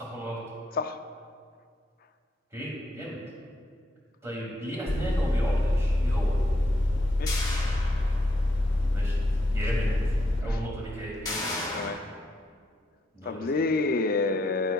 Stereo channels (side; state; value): both; normal; correlation 0.78